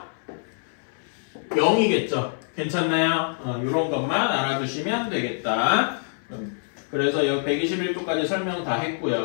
0이겠죠. 괜찮나요? 이런 것만 알아두시면 되겠다. 그래서 여기 121쪽까지 설명 다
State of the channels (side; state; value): right; silent; 60 dB below the other